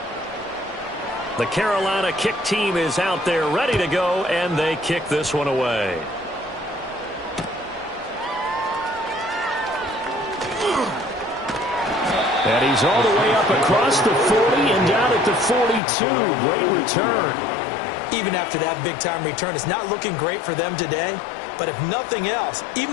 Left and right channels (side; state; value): right; drops out; at 15.8 s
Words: The Carolina kick team is out there ready to go, and they kick this one away. And he's all the way up across the 40 and down at the 42. Great return. Even after that big-time return, it's not looking great for them today. But if nothing else, even